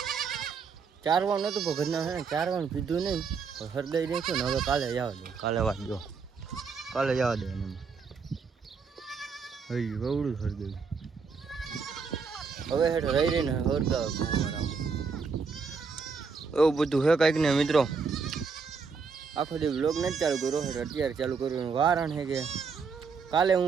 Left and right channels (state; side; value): quieter; left; 5.3 dB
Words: ચારવાનું નતું પણ ઘરના હે ને ચારવાનું પીધું નહીં હરગાઈ નાખ્યું ને હવે કાલે જવા દે. કાલે વાત જો કાલે જવા દે એને હઈ વવડું હરગાયું હવે હેઠ રહી રહીને હરગાવે એવું બધું હે કાંઈક ને મિત્રો. આખો દી વ્લોગ નથી ચાલુ કર્યો અત્યારે ચાલુ કર્યું. કારણ છે કે કાલે